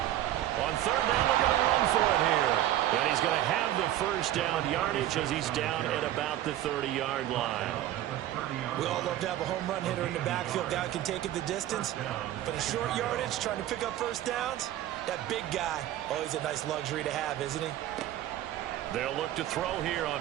On 3rd down, they're going to run for it here. And he's going to have the 1st down yardage as he's down at about the 30-yard line. We all love to have a home run hitter in the backfield. Guy can take it the distance. But in short yardage, trying to pick up 1st downs, that big guy, always a nice luxury to have, isn't he? They'll look to throw here on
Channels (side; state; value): left; quieter; 13.2 dB